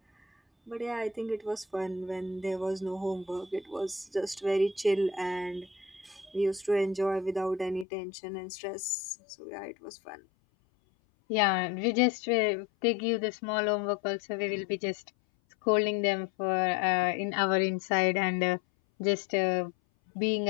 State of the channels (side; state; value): right; drops out; at 7.9 s